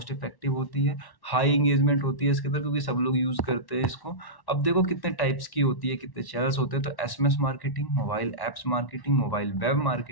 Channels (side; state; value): right; late; 1.1 ms